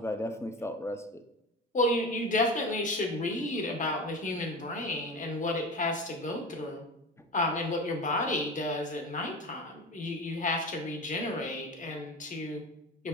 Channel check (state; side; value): normal; both; correlation 0.29